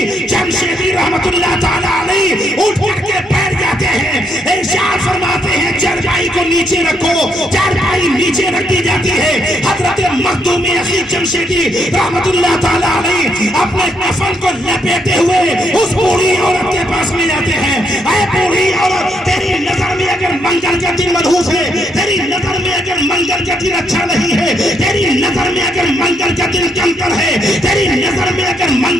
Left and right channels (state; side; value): normal; both; correlation 0.75